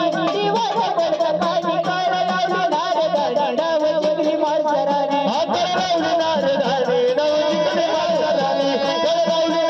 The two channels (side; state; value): both; identical; correlation 1.00